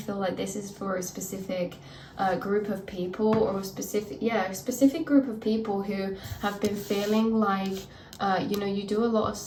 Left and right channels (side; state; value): both; identical; correlation 1.00